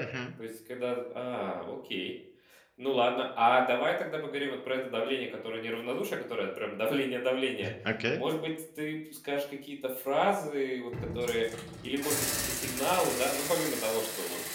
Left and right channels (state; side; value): identical; both; correlation 1.00